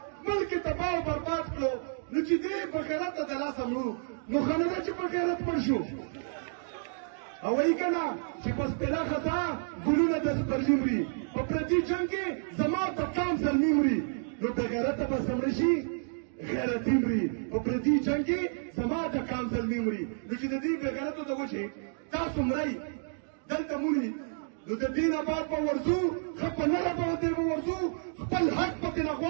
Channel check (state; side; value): silent; left; digital silence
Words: ملک یې تباه او برباد کړو نو چې دې په غیرته د لاسه مړو نو ښه نه ده چې په غیرت مړ شو او وایي که نه چې په سپېره خزا ګلونه د سپرلي مري په پردي جنګ کې زما په کام زلمي مري نو بې غیرته به څه مړه شي غیرتي مري په پردي جنګ کې زما د کام زلمي مري نو چې د دې بې غیرتو د وجې تاسو مرئ دلته مري نو د دې نه بعد به ورځو ښه په نره باندې به ورځو خپل حق پکې نه